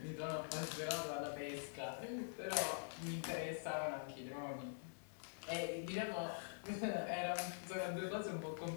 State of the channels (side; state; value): right; silent; digital silence